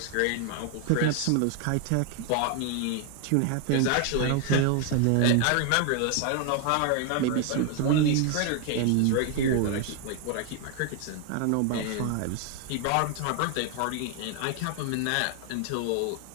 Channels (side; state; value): both; different; correlation 0.00